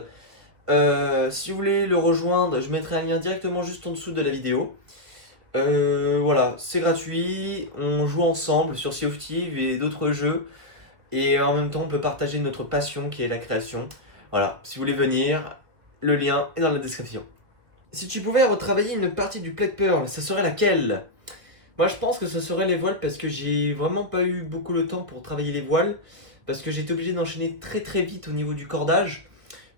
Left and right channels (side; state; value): left; late; 1.9 ms